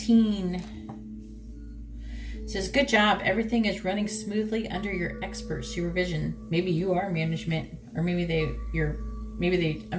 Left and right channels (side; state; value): both; identical; correlation 1.00